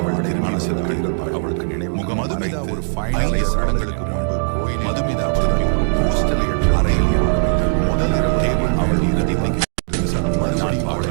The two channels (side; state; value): left; silent; 61 dB below the other